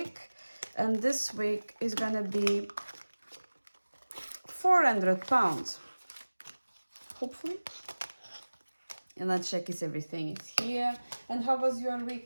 And this week is gonna be £400, hopefully. And let's check if everything is here. And how was your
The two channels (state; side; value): inverted; both; correlation -1.00